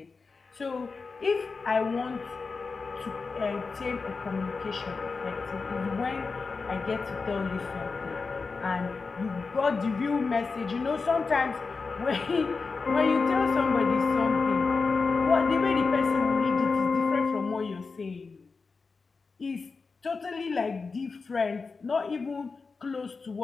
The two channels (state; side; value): quieter; right; 4.5 dB